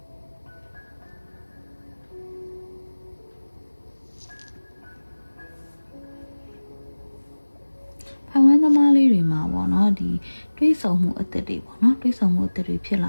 ဖိုင်ဝမ်သမားလေးတွေမှာပေါ့နော်ဒီတွေးဆုံမှုအသက်တွေပေါ့နော်တွေးဆုံမှုအသက်တွေဖြစ်လ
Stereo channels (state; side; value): inverted; both; correlation -1.00